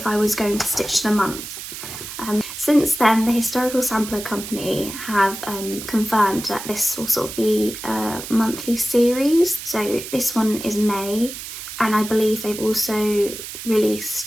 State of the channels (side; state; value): right; noise; hiss, 10 dB below the sound